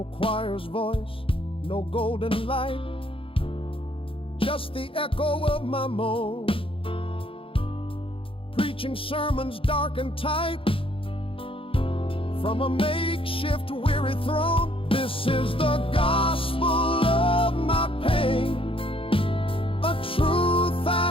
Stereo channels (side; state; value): right; late; 0.26 ms